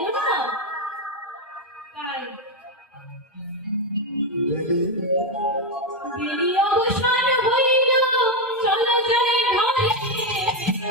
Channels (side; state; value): both; normal; correlation 0.07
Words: না। তাই দেরি অবসান হইল, চলো যাই ঘরে।